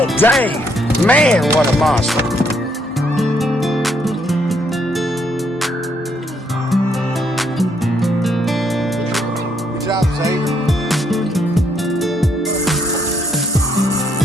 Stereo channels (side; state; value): both; normal; correlation 0.71